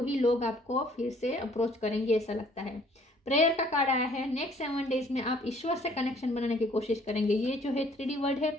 लोग आपको फिर से अप्रोच करेंगे, ऐसा लगता है। प्रेयर का कार्ड आया है। नेक्स्ट 7 डेज में आप ईश्वर से कनेक्शन बनाने की कोशिश करेंगे। ये जो है 3D वर्ड है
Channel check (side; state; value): both; normal; correlation 0.59